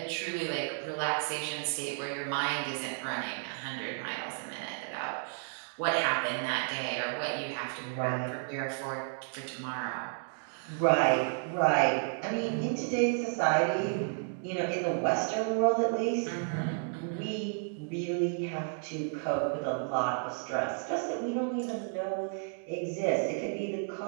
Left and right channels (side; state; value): left; silent; 56 dB below the other